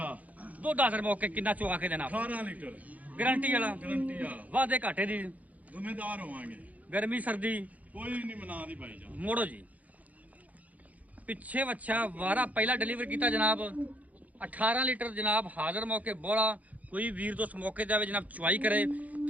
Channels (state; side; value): late; left; 0.075 ms